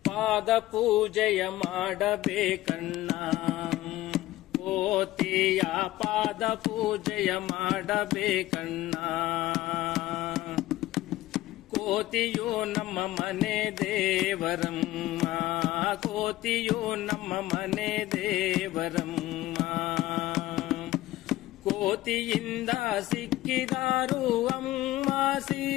ಪಾದ ಪೂಜೆಯ ಮಾಡಬೇಕಣ್ಣ. ಕೋತಿಯ ಪಾದ ಪೂಜೆಯ ಮಾಡಬೇಕಣ್ಣ. ಕೋತಿಯು ನಮ್ಮ ಮನೆ ದೇವರಮ್ಮ, ಕೋತಿಯು ನಮ್ಮ ಮನೆ ದೇವರಮ್ಮ. ಕೋತಿಯಿಂದ ಸಿಕ್ಕಿದಾರು ಅಮ್ಮ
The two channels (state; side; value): quieter; right; 16.1 dB